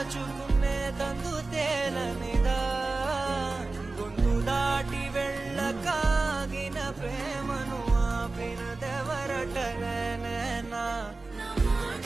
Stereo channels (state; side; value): quieter; left; 3.5 dB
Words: తలుచుకునే తందు తేలనిదా గొంతు దాటి వెళ్ళకాగిన ప్రేమను ఆపినదెవరటనేనా